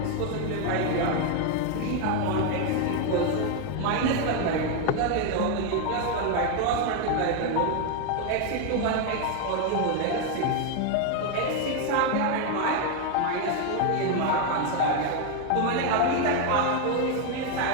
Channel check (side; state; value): both; different; correlation 0.01